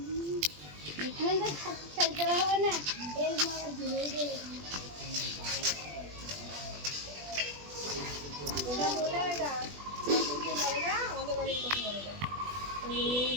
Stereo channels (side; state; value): left; late; 20 ms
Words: এখানে তো খেলতে হবে না এর মারা ধরে দিয়ে